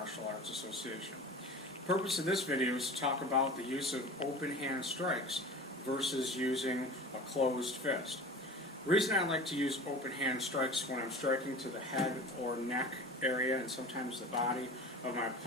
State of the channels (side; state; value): both; normal; correlation 0.36